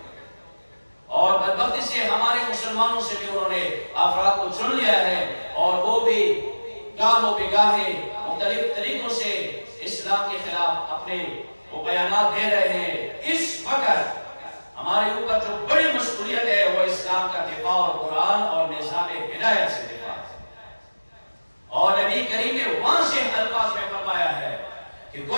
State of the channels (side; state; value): both; inverted; correlation -1.00